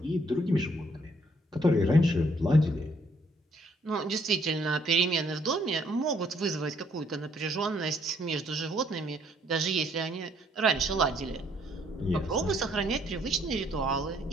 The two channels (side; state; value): both; normal; correlation 0.67